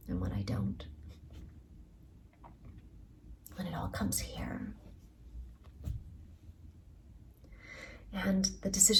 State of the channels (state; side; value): identical; both; correlation 1.00